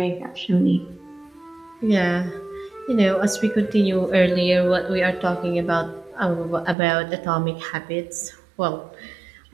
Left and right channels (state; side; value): drops out; left; at 6.8 s